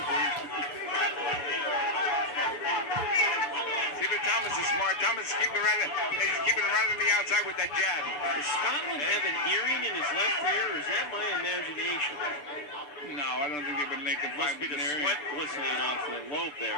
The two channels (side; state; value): right; late; 6.8 ms